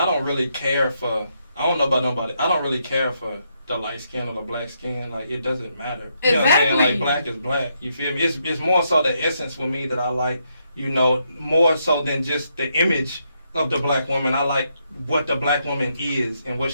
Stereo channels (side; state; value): both; inverted; correlation -0.78